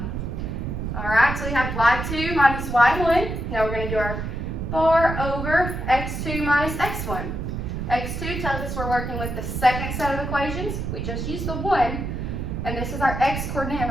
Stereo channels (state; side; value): noise; right; rumble, 4 dB below the sound